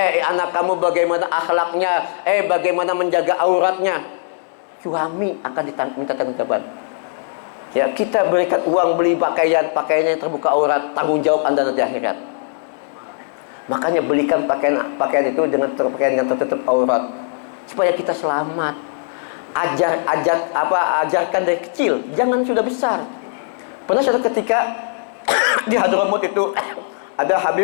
Anak kamu bagaimana akhlaknya? Bagaimana menjaga auratnya? suami akan minta tanggung-jawaban. Ya, kita berikan uang beli pakaiannya yang terbuka aurat, tanggung jawab Anda nanti akhirat. Makanya belikan pakaian itu dengan pakaian yang tertutup aurat supaya kita selamat. Ajarkan dari kecil, jangan sudah besar. Pernah suatu ketika di Hadramut itu ada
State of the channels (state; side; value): silent; right; digital silence